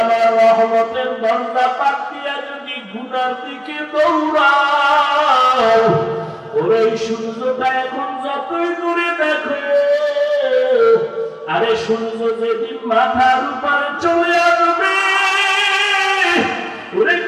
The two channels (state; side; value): identical; both; correlation 1.00